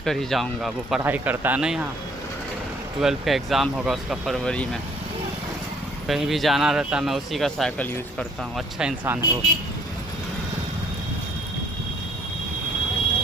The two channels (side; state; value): both; normal; correlation 0.61